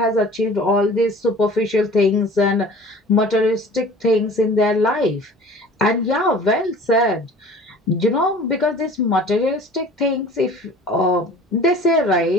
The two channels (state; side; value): normal; both; correlation 0.45